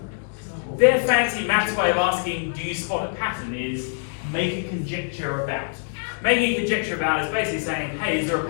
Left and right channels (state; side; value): silent; right; digital silence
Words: their fancy maths way of asking, do you spot a pattern, is make a conjecture about. Making a conjecture about is basically saying, hey, is there a